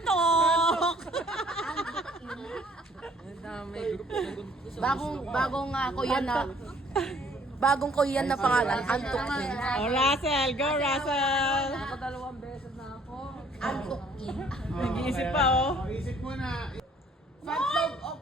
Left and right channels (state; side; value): normal; both; correlation 0.60